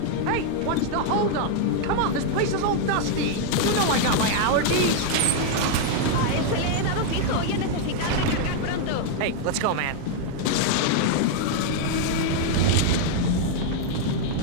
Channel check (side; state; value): both; different; correlation 0.00